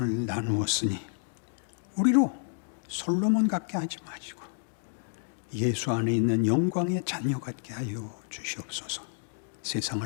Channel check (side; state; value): right; silent; 58 dB below the other